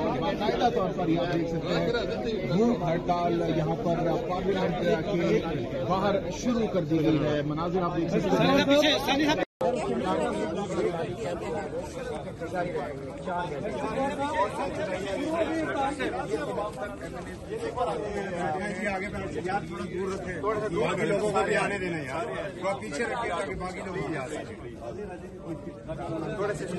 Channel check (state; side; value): identical; both; correlation 1.00